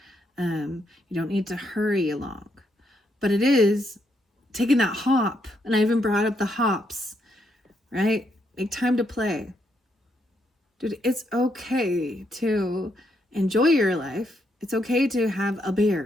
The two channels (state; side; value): normal; both; correlation 0.76